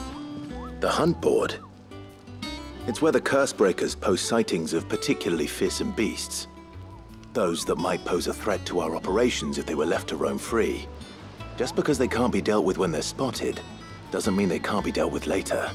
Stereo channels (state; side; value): identical; both; correlation 1.00